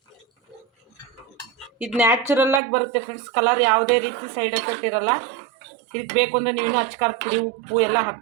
ಇದು ನ್ಯಾಚುರಲ್ಲಾಗಿ ಬರುತ್ತೆ ಫ್ರೆಂಡ್ಸ್. ಕಲರ್ ಯಾವುದೇ ರೀತಿ ಸೈಡ್ ಎಫೆಕ್ಟ್ ಇರೋಲ್ಲ. ಇದಕ್ಕೆ ಬೇಕು ಅಂದರೆ ನೀವು ಅಚ್ಕಾರದ ಪುಡಿ, ಉಪ್ಪು ಎಲ್ಲ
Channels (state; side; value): drops out; left; at 2.6 s